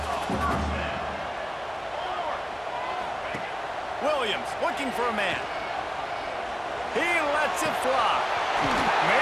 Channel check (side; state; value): both; identical; correlation 1.00